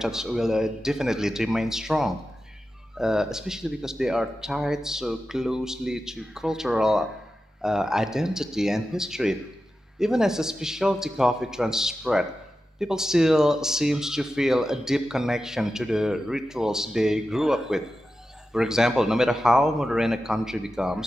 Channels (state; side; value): normal; both; correlation 0.92